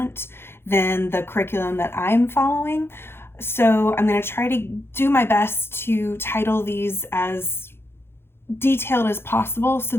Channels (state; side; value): late; right; 0.11 ms